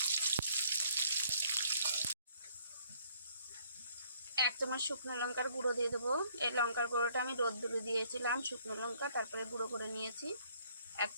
এক চামচ শুকনো লঙ্কার গুঁড়ো দিয়ে দেবো। এই লঙ্কার গুঁড়োটা আমি রোদ্দুরে দিয়েছিলাম, শুকনো লঙ্কা তারপরে গুঁড়ো করে নিয়েছি। 1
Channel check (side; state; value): both; inverted; correlation -0.64